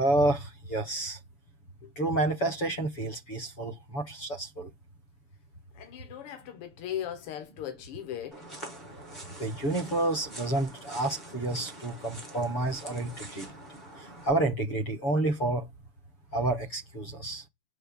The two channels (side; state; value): right; late; 7.0 ms